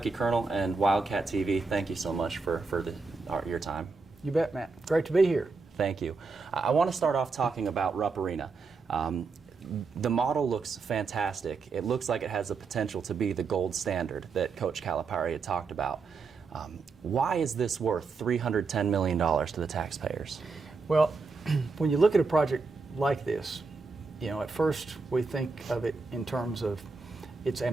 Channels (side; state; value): left; quieter; 4.4 dB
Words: Kernel and Wildcat TV, thank you so much for your time. You bet, Matt. Great to be here. Thank you. I want to start off talking about Rupp Arena. The model looks fantastic. It looks like it has the potential to be the gold standard that Coach Calipari had talked about. Why is this worth $310 million to the taxpayers? Well, when you look at a project like this, you know, at first we think of it in terms of it's